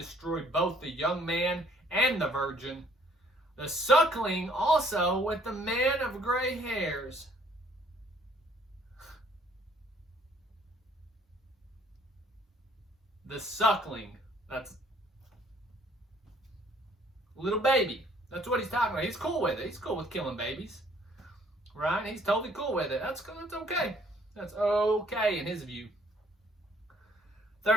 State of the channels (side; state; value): both; normal; correlation 0.62